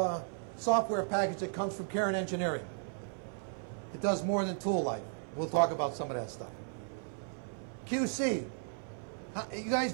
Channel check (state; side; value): silent; left; 54 dB below the other